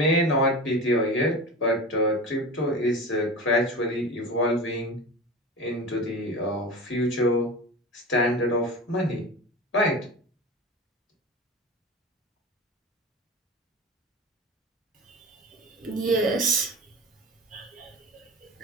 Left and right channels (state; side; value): normal; both; correlation 0.30